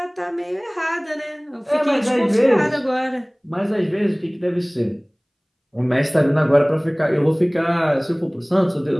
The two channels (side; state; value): both; identical; correlation 1.00